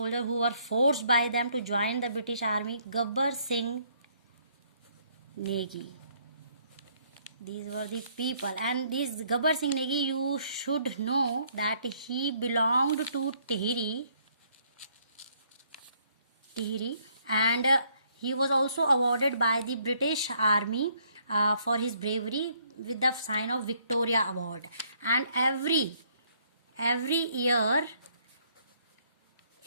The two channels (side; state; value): both; inverted; correlation -0.67